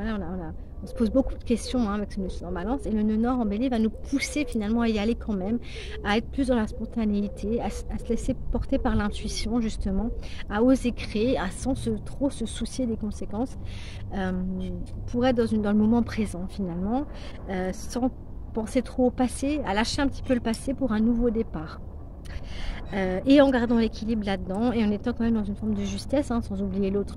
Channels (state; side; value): identical; both; correlation 1.00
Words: se pose beaucoup de questions avec ce nœud sud en balance. Et le nœud nord en bélier va nous pousser finalement à y aller quand même, à être plus dans la spontanéité, à se laisser porter par l'intuition justement, à oser créer, sans trop se soucier des conséquences, pour être dans le moment présent finalement, sans penser trop au passé, à lâcher un petit peu le passé pour un nouveau départ. Et en gardant l'équilibre là-dedans et en étant quand même dans une forme de justesse, sans oublier l'autre